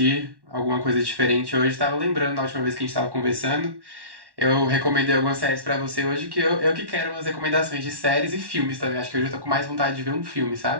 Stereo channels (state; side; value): late; left; 1.1 ms